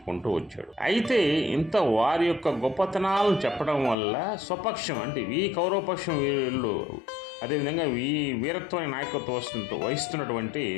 వచ్చాడు. అయితే ఇంత వారి యొక్క గొప్పతనాలను చెప్పడం వల్ల స్వపక్షం అంటే ఈ కౌరవపక్షం వీళ్ళు అదేవిధంగా ఈ వీరత్వాన్ని నాయకత్వం వహిస్తున్నటువంటి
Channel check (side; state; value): right; drops out; at 4.0 s